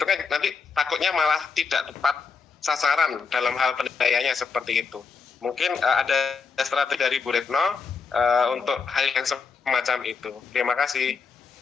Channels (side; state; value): right; quieter; 5.3 dB